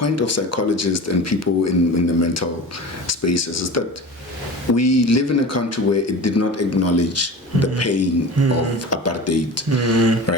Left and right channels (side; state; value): both; normal; correlation 0.34